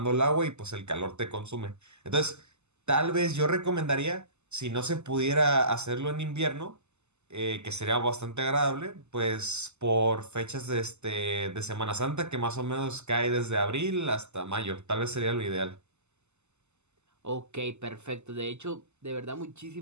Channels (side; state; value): left; late; 0.82 ms